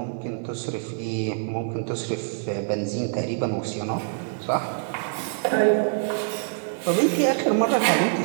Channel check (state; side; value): silent; left; 62 dB below the other